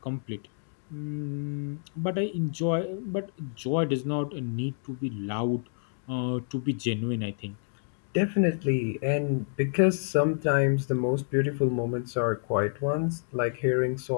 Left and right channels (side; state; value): right; silent; digital silence